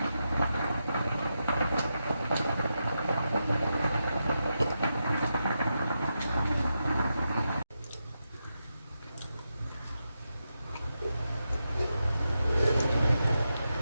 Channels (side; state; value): both; inverted; correlation -0.87